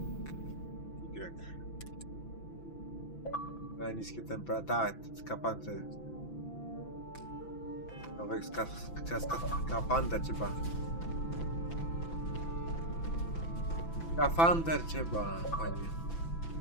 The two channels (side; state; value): right; late; 6.0 ms